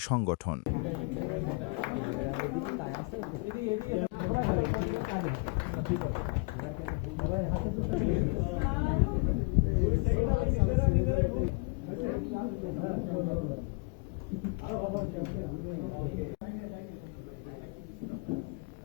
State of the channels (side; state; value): right; quieter; 31.3 dB